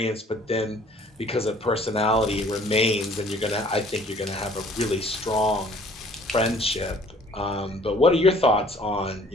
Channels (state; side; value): normal; both; correlation 0.55